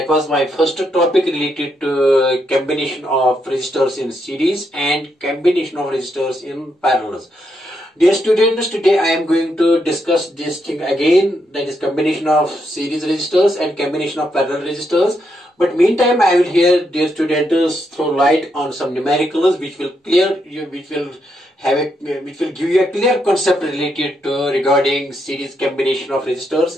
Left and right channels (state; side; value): normal; both; correlation 0.80